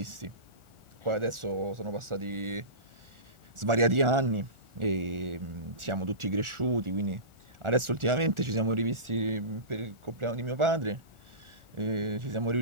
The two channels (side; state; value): left; late; 1.4 ms